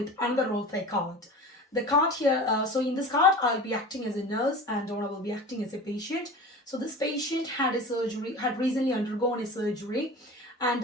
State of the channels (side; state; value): both; normal; correlation 0.35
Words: another role play card. The card here, so in this card, I'll be acting as a nurse and Donna will be acting as a patient. So this patient had recently undergone a surgery, and